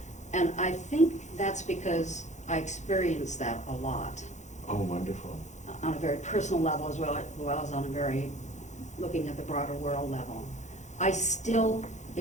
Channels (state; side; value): late; right; 0.34 ms